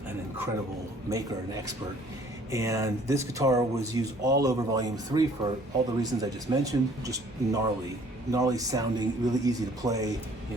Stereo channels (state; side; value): normal; both; correlation 0.56